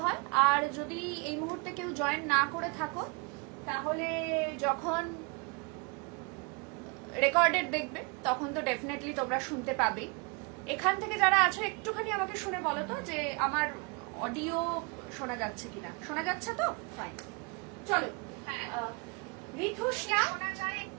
হয়। আর যদি এই মুহূর্তে কেউ জয়েন না করে থাকো, তাহলে যখন রেকর্ডেড দেখবে তখন তো ডেফিনেটলি তোমরা শুনতে পাবে। এখান থেকে যারা আছো একটুখানি আমাকে শুনে বলো তো যে আমার অডিও শোনা যাচ্ছে কিনা। শোনা যাচ্ছে তো? ফাইন। চলো, ঋতুষ্ণা,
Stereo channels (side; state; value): left; quieter; 31.7 dB